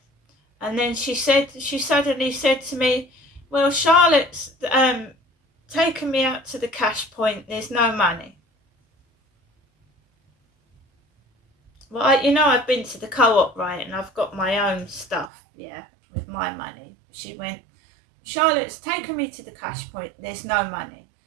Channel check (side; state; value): left; drops out; at 15.3 s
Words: and then she suddenly said to me, "Well, Charlotte's taken me out to the cash point, there's no money." Well, I've been to the co-op, right, and I've got my own stuff, yeah, with my money. She went, "Charlotte's taken me to the cash point, there's no money."